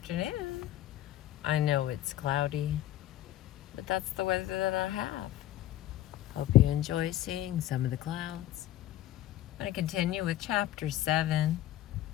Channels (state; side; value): quieter; right; 13.7 dB